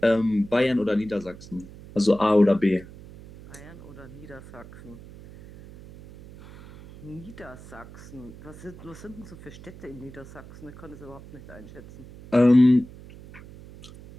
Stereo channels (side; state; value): right; noise; hum, 18 dB below the sound